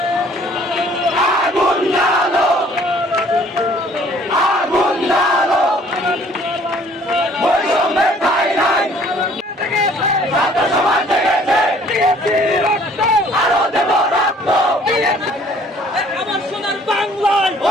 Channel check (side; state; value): both; normal; correlation 0.57